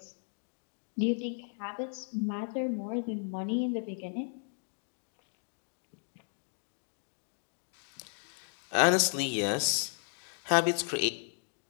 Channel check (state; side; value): silent; right; 55 dB below the other